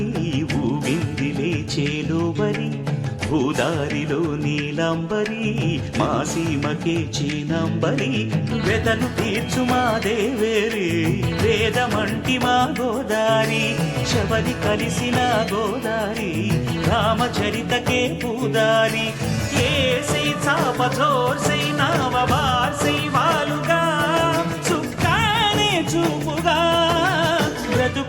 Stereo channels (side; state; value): both; identical; correlation 1.00